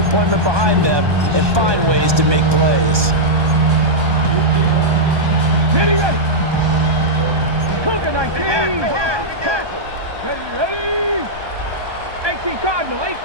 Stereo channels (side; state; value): left; late; 1.2 ms